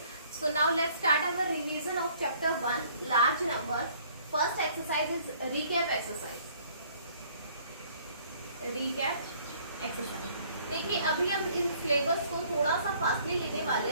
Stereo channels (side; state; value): both; inverted; correlation -0.59